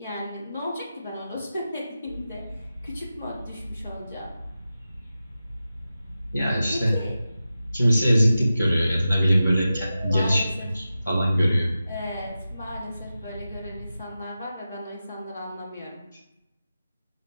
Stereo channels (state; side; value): inverted; both; correlation -0.92